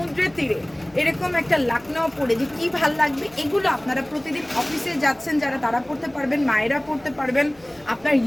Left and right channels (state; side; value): noise; right; hum, 27 dB below the sound